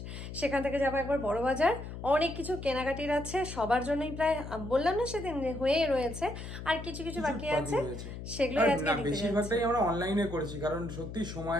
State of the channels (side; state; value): left; noise; hum, 9 dB below the sound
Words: সেখান থেকে যাবো একবার বড় বাজার। অনেক কিছু কেনাকাটির আছে সবার জন্যই, প্রায় বললাম না সেদিন হয়ে রয়েছে, আর কিছু কিছু বাকি আছে, সেগুলোই আজকে নিতে যাচ্ছি। বেশিরভাগটাই আমরা অনলাইনে করেছি কারণ সত্যি